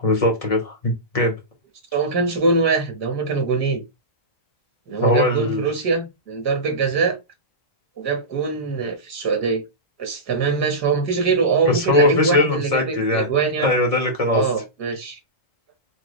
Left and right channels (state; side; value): late; right; 1.7 ms